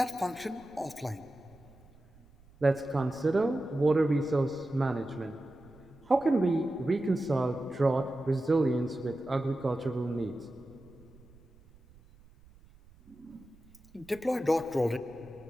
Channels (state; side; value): noise; right; rumble, 26 dB below the sound